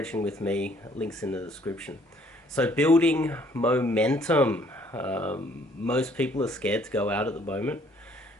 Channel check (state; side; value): normal; both; correlation 0.62